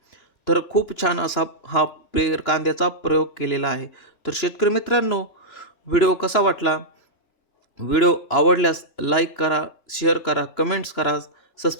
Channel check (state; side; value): late; right; 2.9 ms